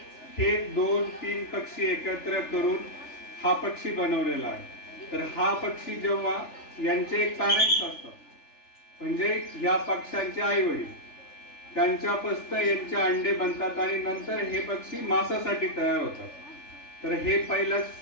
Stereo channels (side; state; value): right; late; 3.4 ms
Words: हे 2-3 पक्षी एकत्र करून हा पक्षी बनवलेला आहे. तर हा पक्षी जेव्हा यांचे एक पॅरेंट्स असतात, म्हणजे या पक्ष्यांचे आई वडील, त्यांच्यापासून यांचे अंडे बनतात आणि नंतर हे पक्षी मांसासाठी तयार होतात. तर हे पहिलं